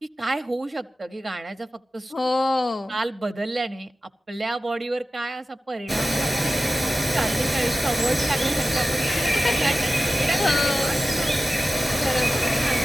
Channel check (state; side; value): normal; both; correlation 0.94